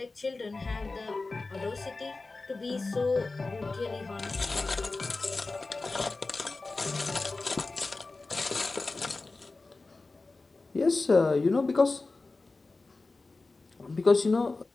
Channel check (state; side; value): quieter; right; 3.5 dB